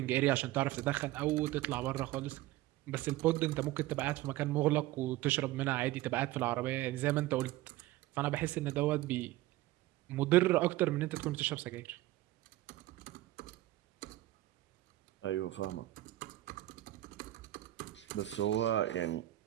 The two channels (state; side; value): quieter; left; 16.2 dB